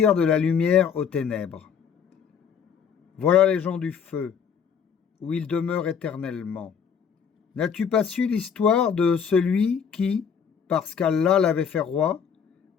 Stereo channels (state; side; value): quieter; right; 7.1 dB